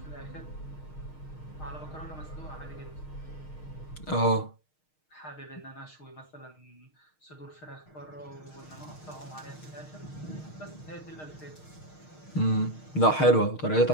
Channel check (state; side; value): late; right; 6.5 ms